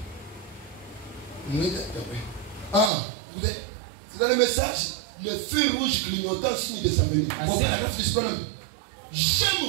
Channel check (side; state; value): left; drops out; at 2.9 s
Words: Ah, c'est dans le message, le feu rouge clignotant signe de sa venue.